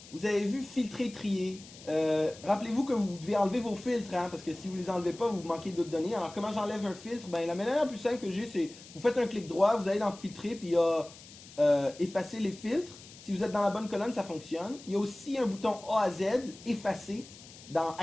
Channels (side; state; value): left; noise; hiss, 19 dB below the sound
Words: Vous avez vu filtrer, trier. Rappelez-vous que vous devez enlever vos filtres, hein, parce que si vous ne les enlevez pas, vous manquez d'autres données. Alors, comment j'enlève un filtre? Ben, la manière la plus simple que j'ai, c'est vous faites un clic droit, vous allez dans filtrer, puis il y a effacer les filtres. Si vous êtes dans la bonne colonne, ça fonctionne. Il y a aussi un bouton A à Z, effacer, dans